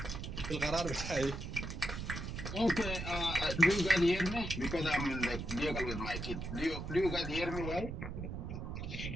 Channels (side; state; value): right; noise; rumble, 6 dB below the sound